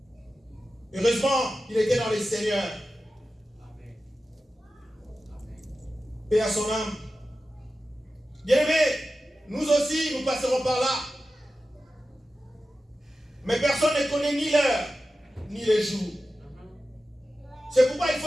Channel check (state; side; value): normal; both; correlation 0.93